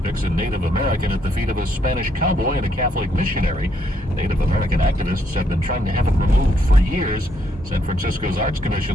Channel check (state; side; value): normal; both; correlation 0.73